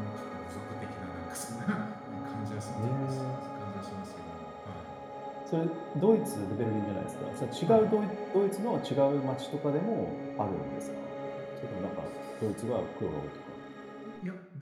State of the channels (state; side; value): identical; both; correlation 1.00